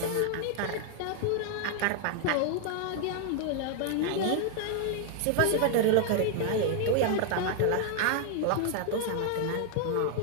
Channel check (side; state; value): both; different; correlation 0.00